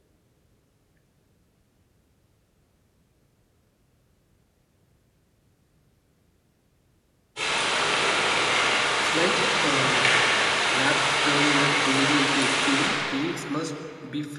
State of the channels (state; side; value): identical; both; correlation 1.00